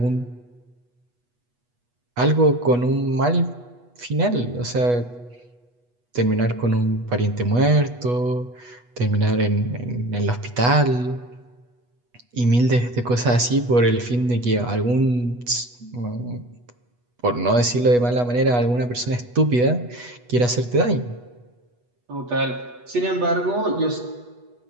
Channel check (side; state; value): left; late; 8.2 ms